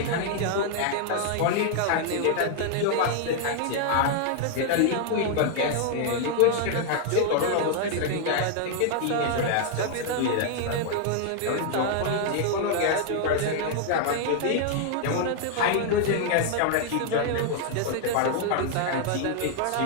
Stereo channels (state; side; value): different; both; correlation 0.00